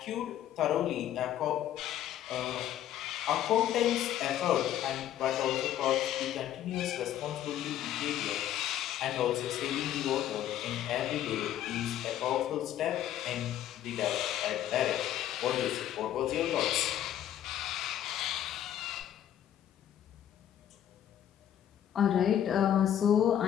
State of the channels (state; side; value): quieter; right; 11.2 dB